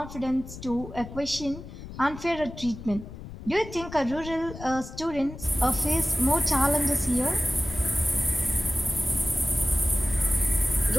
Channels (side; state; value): left; noise; rumble, 13 dB below the sound